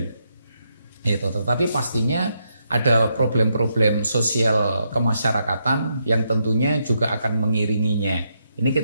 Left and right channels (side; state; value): both; inverted; correlation -0.80